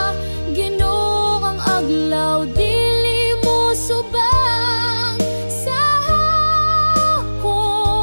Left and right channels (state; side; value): inverted; both; correlation -1.00